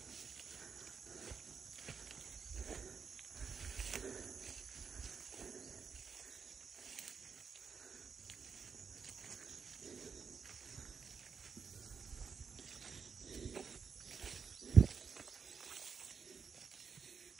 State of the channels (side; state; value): left; quieter; 5.9 dB